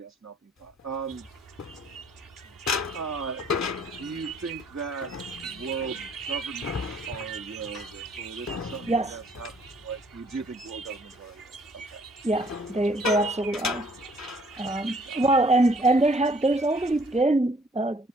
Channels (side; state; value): both; normal; correlation 0.62